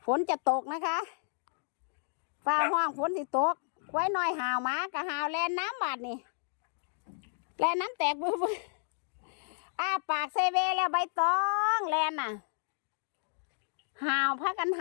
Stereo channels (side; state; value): right; silent; digital silence